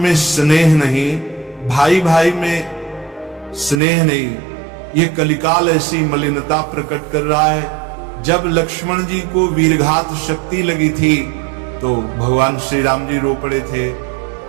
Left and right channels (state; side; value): drops out; left; at 3.8 s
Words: स्नेह नहीं, भाई भाई में स्नेह नहीं। ये कलिकाल ऐसी मलिनता प्रकट कर रहा है। जब लक्ष्मण जी को वीरघात शक्ति लगी थी तो भगवान श्री राम जी रो पड़े थे।